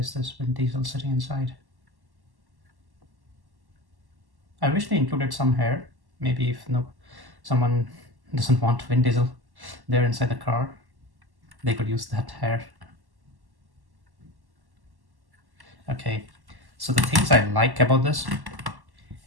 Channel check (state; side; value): late; left; 1.1 ms